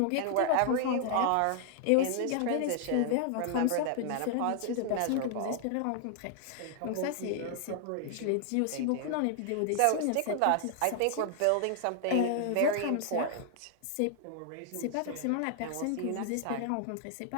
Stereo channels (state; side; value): different; both; correlation 0.00